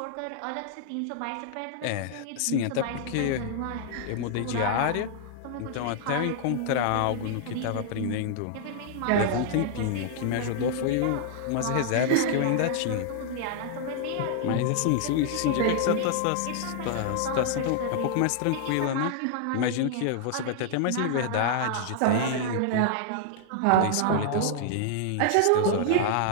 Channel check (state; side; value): different; both; correlation -0.01